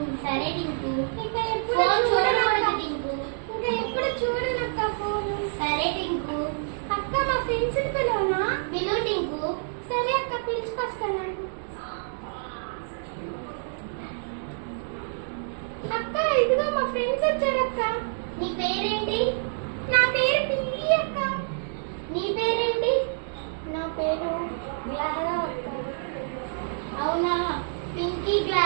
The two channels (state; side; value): silent; left; digital silence